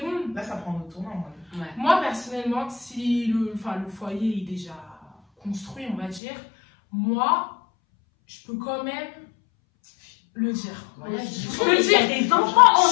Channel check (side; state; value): right; drops out; at 6.2 s